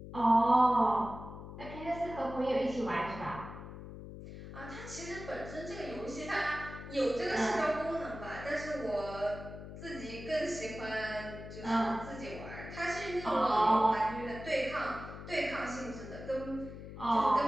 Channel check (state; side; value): noise; left; hum, 12 dB below the sound